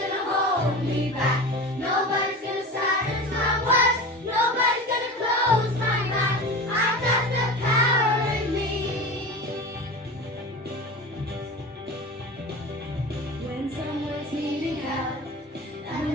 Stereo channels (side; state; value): both; normal; correlation 0.31